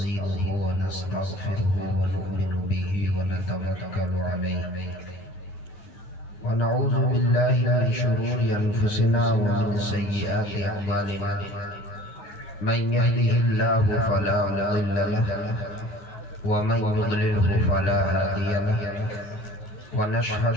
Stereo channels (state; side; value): late; right; 9.8 ms